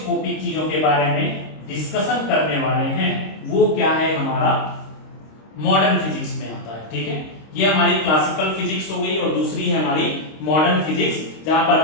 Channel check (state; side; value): late; right; 26 ms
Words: चीजों के बारे में डिस्कशन करने वाले हैं, वो क्या है, हमारा मॉडर्न फिजिक्स में आता है। ठीक है, ये हमारी क्लासिकल फिजिक्स हो गई, और दूसरी है हमारी मॉडर्न फिजिक्स, जहां पर